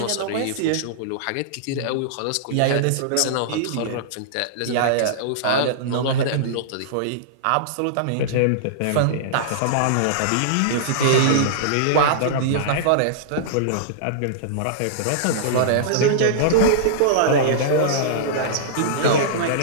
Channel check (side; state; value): both; different; correlation -0.02